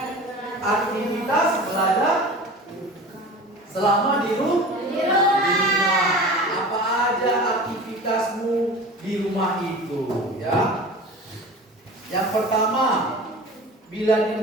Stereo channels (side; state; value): both; normal; correlation 0.37